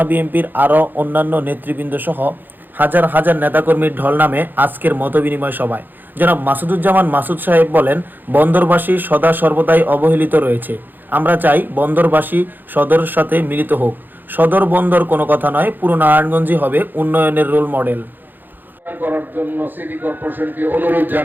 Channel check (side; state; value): left; late; 0.089 ms